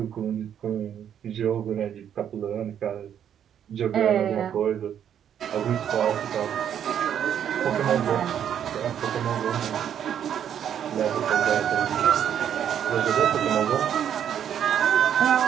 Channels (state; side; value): quieter; left; 9.3 dB